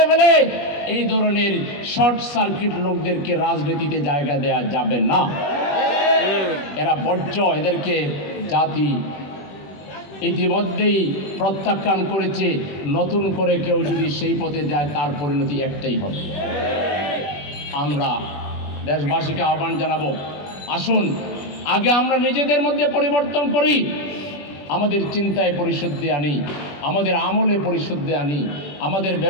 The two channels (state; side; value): late; right; 21 ms